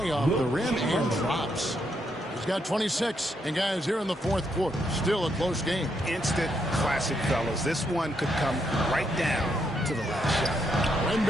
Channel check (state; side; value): normal; both; correlation 0.77